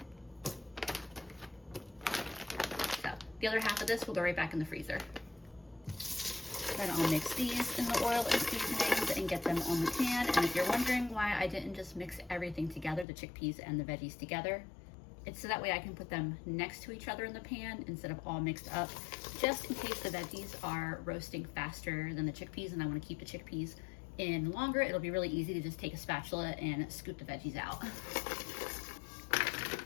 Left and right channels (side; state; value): right; drops out; at 13.1 s